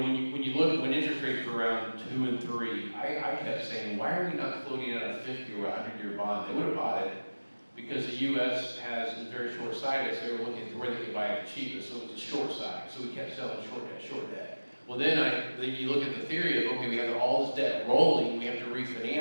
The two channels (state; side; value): inverted; both; correlation -1.00